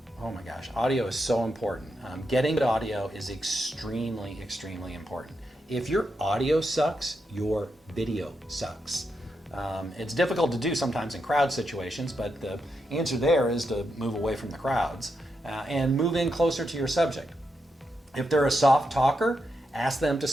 Oh my gosh, audio is so important. Getting good audio is extremely, extremely important. If your audio sucks, your video sucks. It's difficult to do sometimes in crowd situations, but the answer there is to move away from the crowds and move in closer to your subject. If they're a soft talker, ask them to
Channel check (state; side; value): normal; both; correlation 0.84